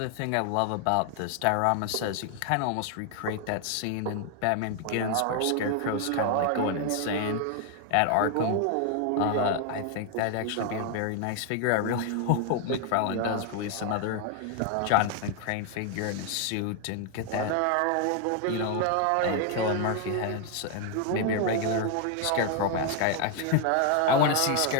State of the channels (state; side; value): different; both; correlation 0.00